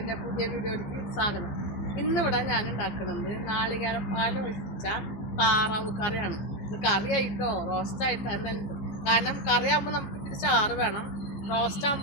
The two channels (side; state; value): right; late; 14 ms